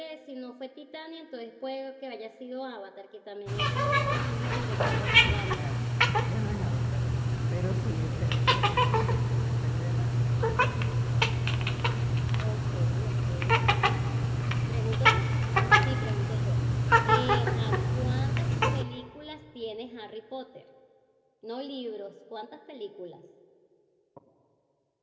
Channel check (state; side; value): identical; both; correlation 1.00